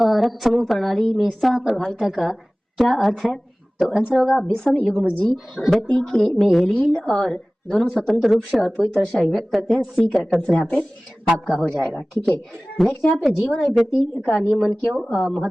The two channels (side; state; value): both; normal; correlation 0.98